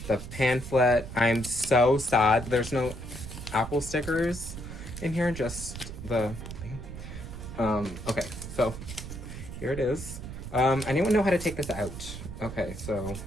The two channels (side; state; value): right; noise; rumble, 10 dB below the sound